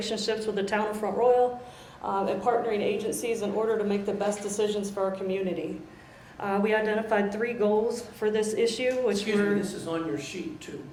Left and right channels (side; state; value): both; identical; correlation 1.00